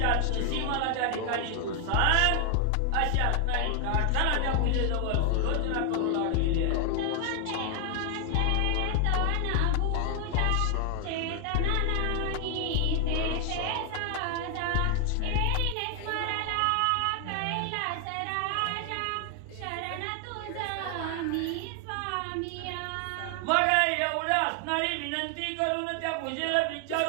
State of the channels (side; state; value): both; different; correlation 0.00